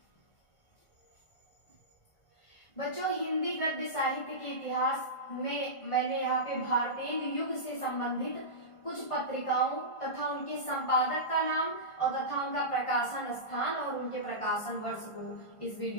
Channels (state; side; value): late; right; 1.4 ms